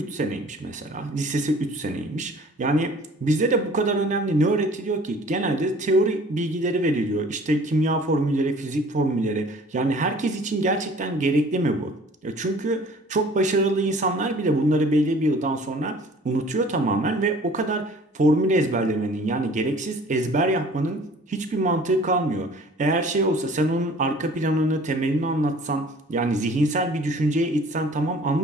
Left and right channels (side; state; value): both; normal; correlation 0.50